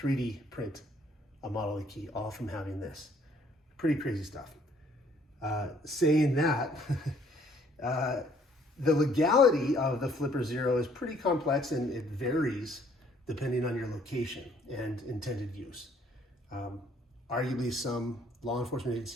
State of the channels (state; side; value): normal; both; correlation 0.63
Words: print a model of the key, all from having this. Pretty crazy stuff. Saying that, the legality of the Flipper Zero is pretty complex, and it varies depending on your location and intended use. Arguably, some law enforcement